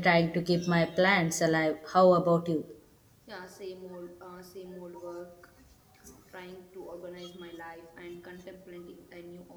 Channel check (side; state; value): both; identical; correlation 1.00